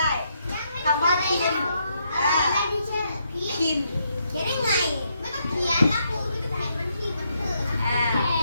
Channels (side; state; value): both; inverted; correlation -0.77